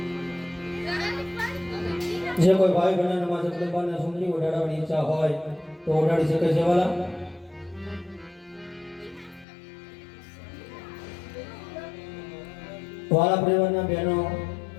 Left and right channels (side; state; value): right; drops out; at 9.5 s